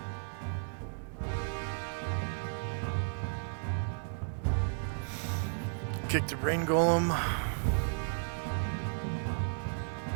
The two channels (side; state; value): left; silent; 55 dB below the other